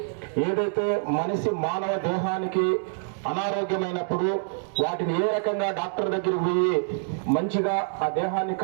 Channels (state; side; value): silent; left; 61 dB below the other